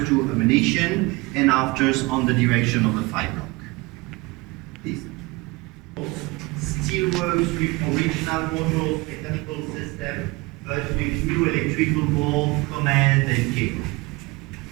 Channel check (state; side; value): quieter; left; 23.5 dB